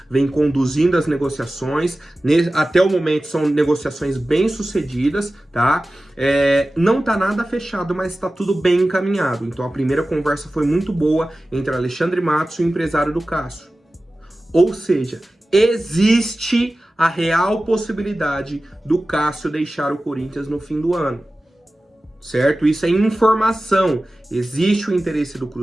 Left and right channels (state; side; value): normal; both; correlation 0.96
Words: vem conduzindo as negociações, até o momento são negociações bem sucedidas, tá? Não tá nada fechado, mas tá tudo bem encaminhado. Então a primeira conversa foi muito boa entre Alexandre Matos e o empresário do Cássio. Ou seja, existe a real possibilidade do Cássio deixar o Corinthians no fim do ano, certo? Isso é informação. Existe o interesse do